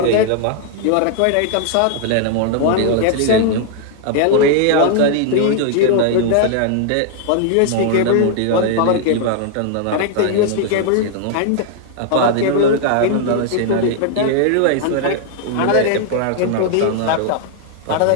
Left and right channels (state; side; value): different; both; correlation 0.00